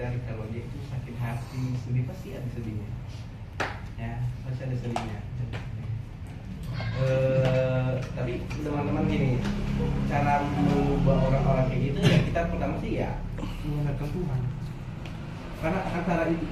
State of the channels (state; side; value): identical; both; correlation 1.00